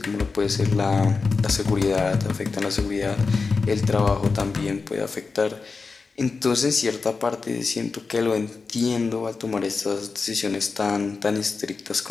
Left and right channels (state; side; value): quieter; right; 4.5 dB